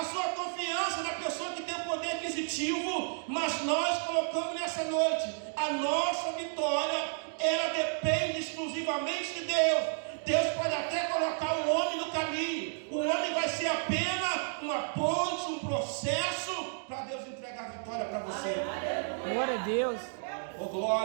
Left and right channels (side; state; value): left; silent; digital silence